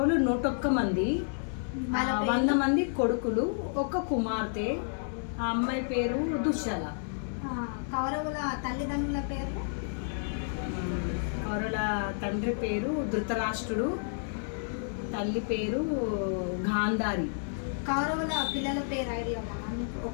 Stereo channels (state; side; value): silent; right; digital silence